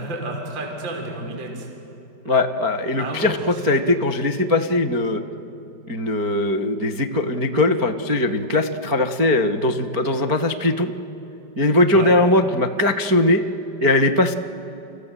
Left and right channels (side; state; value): left; late; 5.1 ms